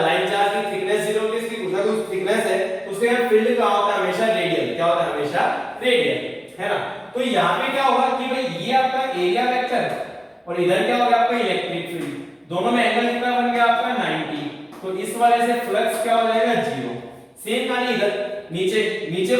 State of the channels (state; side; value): identical; both; correlation 1.00